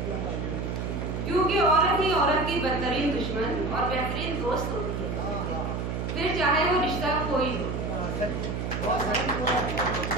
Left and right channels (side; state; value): right; noise; hum, 3 dB below the sound